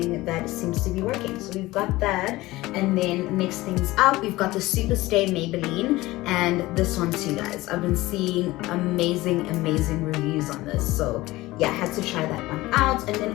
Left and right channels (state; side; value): quieter; right; 18.8 dB